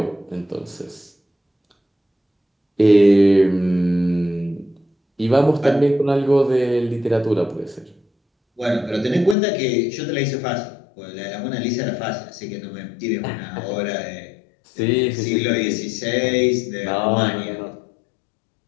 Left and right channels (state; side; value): drops out; right; at 9.3 s